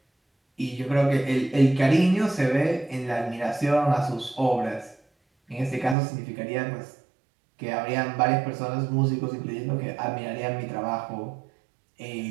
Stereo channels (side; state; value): left; drops out; at 6.0 s